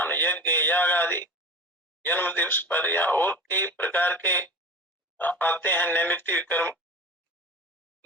यज्ञ, याग आदि, जन्म दिवस पर या और कई प्रकार के आते हैं नैमित्तिक कर्म,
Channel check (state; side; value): normal; both; correlation 0.34